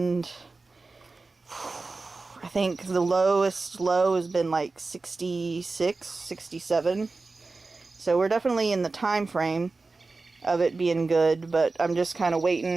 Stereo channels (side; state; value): left; quieter; 3.7 dB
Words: I think the lowest low has been like 66, 67. So we're definitely in the time frame of it being good, but I'm just kind of